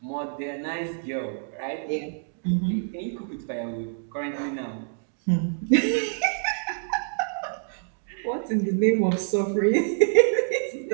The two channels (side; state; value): left; silent; digital silence